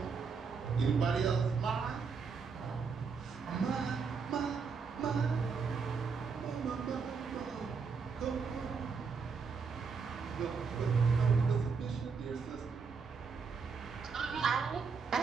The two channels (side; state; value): left; quieter; 5.4 dB